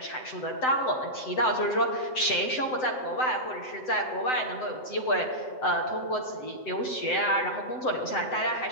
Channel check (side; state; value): right; late; 7.8 ms